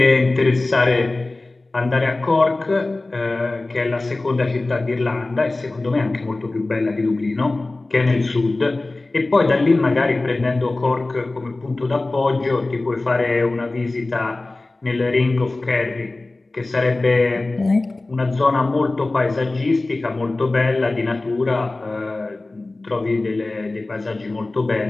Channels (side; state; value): right; quieter; 3.0 dB